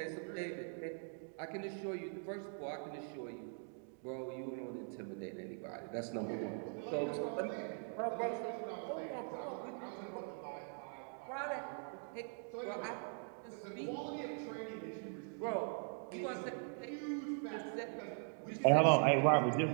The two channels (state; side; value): silent; left; 50 dB below the other